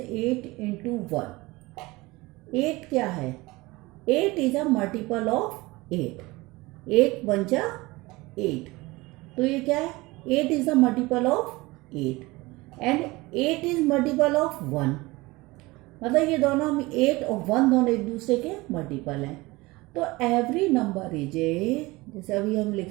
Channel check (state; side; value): quieter; left; 21.8 dB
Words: 8 इंटू 1, 8 क्या है? 8 is a multiple of 8। 8 one जा 8, तो ये क्या है? 8 is a multiple of 8 and 8 is multiple of 1। मतलब ये दोनों हम 8 और 1 दोनों एक दूसरे के मल्टीपल हैं। तो एवरी नंबर इज ए, जैसे अभी हम